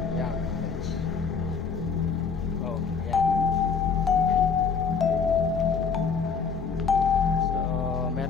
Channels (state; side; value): quieter; right; 5.7 dB